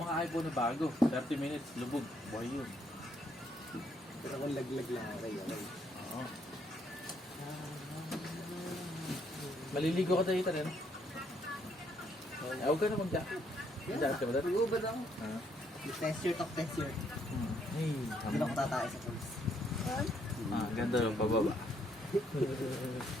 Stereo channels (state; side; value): normal; both; correlation 0.71